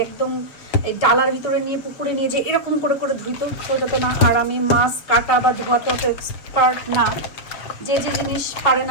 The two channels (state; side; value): late; right; 7.1 ms